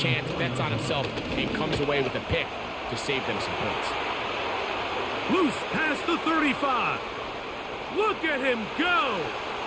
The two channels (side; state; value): both; identical; correlation 1.00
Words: bets on himself, and comes away with a pick to save them some points. Loose past the 35. Look at him go.